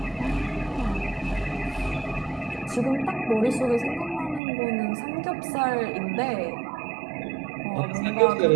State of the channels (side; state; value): left; drops out; at 4.4 s